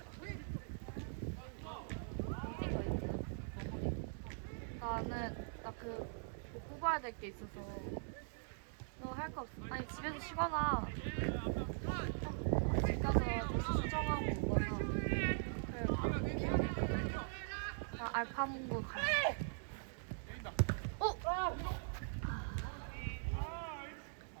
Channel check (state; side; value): silent; left; digital silence